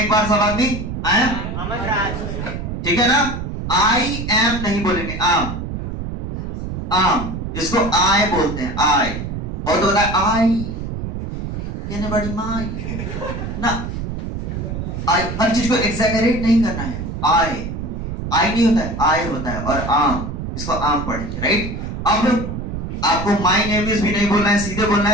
एक बार सब आदमी। आई एम अमन राज, ठीक है ना। आई एम नहीं बोलेंगे, आम, आम। इसको आई बोलते हैं, आई। बहुत होता है आई कहने बड़ी माई ना, आई हर चीज को एग्जैगरेट नहीं करना है। आई आई नहीं होता है, आई होता है। और आम, इसको आम पढ़ेंगे, राइट। अब आपको माई नेम इज भी नहीं बोलना है, सीधे बोलना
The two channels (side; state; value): right; noise; rumble, 5 dB below the sound